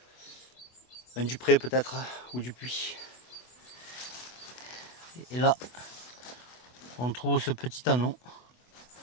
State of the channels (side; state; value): right; late; 24 ms